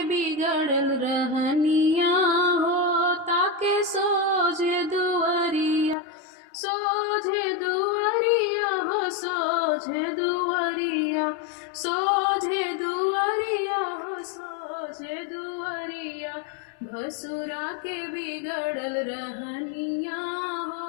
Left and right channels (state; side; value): drops out; right; at 6.0 s